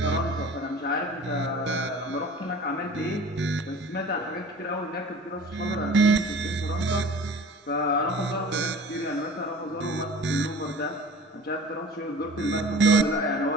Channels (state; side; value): normal; both; correlation 0.43